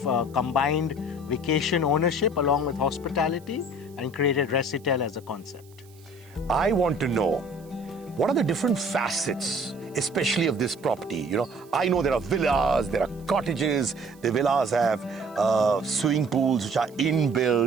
combined vacation ownership along with hospitality and created ResiTel as a concept. I want to know, what are the different facets, especially of this property? I know there are villas, there are cottages, the villas have swimming pools which are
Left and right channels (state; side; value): noise; right; hiss, 28 dB below the sound